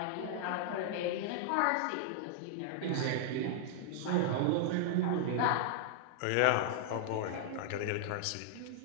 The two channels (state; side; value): different; both; correlation -0.01